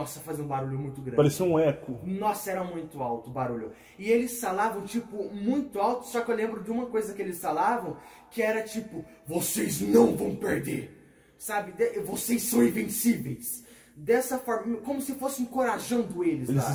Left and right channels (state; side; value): identical; both; correlation 1.00